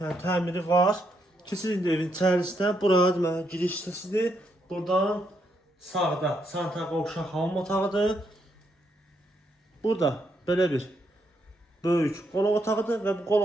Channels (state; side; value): normal; both; correlation 0.77